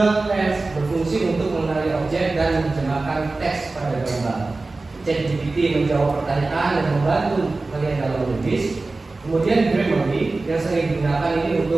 Lens berfungsi untuk mengenali objek dan menerjemahkan teks pada gambar. ChatGPT menjawab pertanyaan dan membantu kalian dalam menulis. Kemudian Grammarly yang sering digunakan ini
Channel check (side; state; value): left; quieter; 3.4 dB